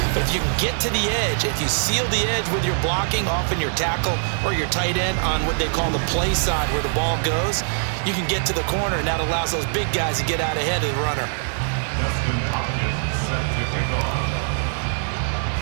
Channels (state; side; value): silent; left; 57 dB below the other